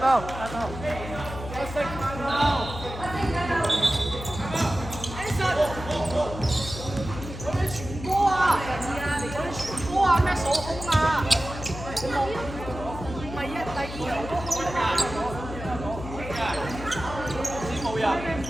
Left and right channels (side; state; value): left; noise; hum, 10 dB below the sound